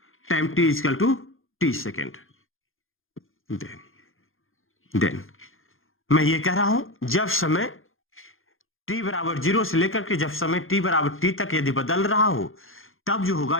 time t equal to t second, then मैं ये कह रहा हूं जब समय t बराबर 0 से लेकर के जब समय t बराबर t तक यदि बदल रहा हो, तब जो होगा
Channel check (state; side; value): late; right; 0.60 ms